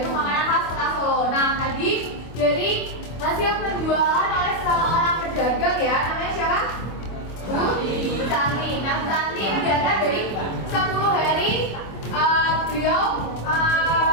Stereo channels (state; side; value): late; right; 25 ms